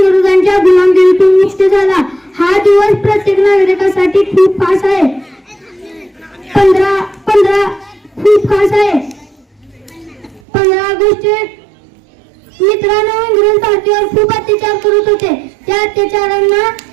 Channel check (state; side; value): drops out; left; at 10.4 s